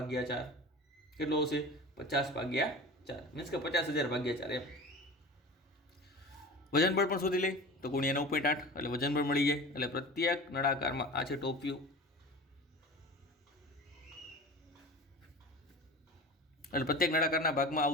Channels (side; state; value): both; normal; correlation 0.34